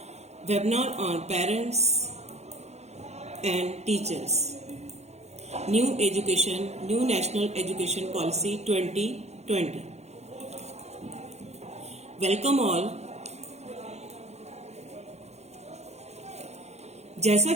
Webinar on parents and teachers. New Education, New National Education Policy 2020. Welcome all. जैसा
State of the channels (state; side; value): late; left; 0.32 ms